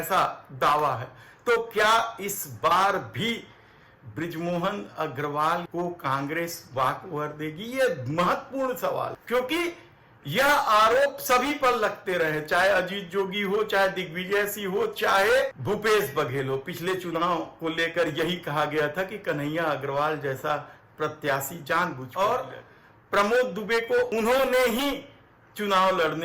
दावा है। तो क्या इस बार भी बृजमोहन अग्रवाल को कांग्रेस वाकओवर देगी? ये महत्वपूर्ण सवाल, क्योंकि यह आरोप सभी पर लगते रहे, चाहे अजीत जोगी हो, चाहे दिग्विजय सिंह हो, चाहे भूपेश बघेल हो। पिछले चुनाव को लेकर यही कहा गया था कि कन्हैया अग्रवाल जैसा प्रत्याशी जानबूझकर, और प्रमोद दुबे को उन्होंने ही चुनाव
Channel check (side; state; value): both; identical; correlation 1.00